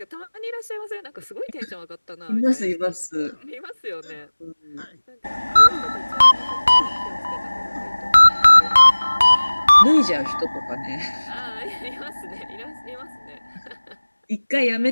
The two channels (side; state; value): both; inverted; correlation -1.00